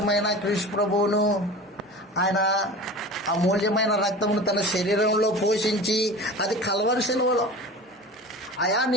క్రీస్తు ప్రభువును, ఆయన అమూల్యమైన రక్తమును తన శరీరంలో పోషించి, అది కల్వరి శిలువలో, అయా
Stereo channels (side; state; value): both; normal; correlation 0.35